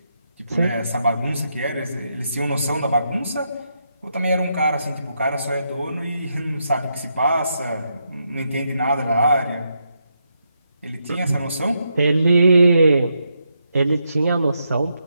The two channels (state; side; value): inverted; both; correlation -0.81